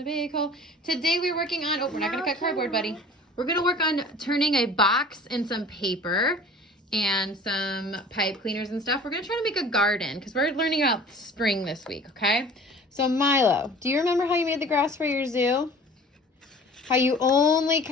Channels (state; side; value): normal; both; correlation 0.45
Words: big hole. Today we're working on, we're not gonna cut cardboard, buddy. We're gonna work on turning a box and some paper and some pipe cleaners and stuff. We're gonna try to make a garden because we're learning about spring this week, okay? So Milo, do you remember how you made the grass for your zoo? How you only